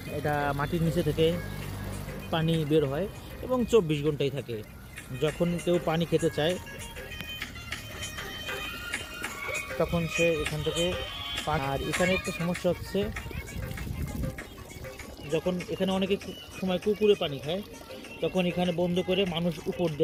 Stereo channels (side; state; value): both; identical; correlation 1.00